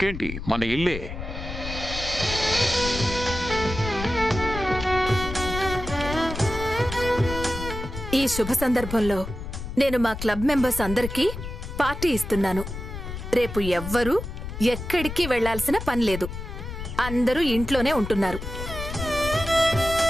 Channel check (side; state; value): left; noise; rumble, 8 dB below the sound